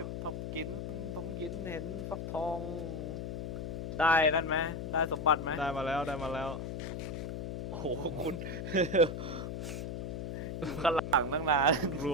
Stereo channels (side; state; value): left; noise; hum, 5 dB below the sound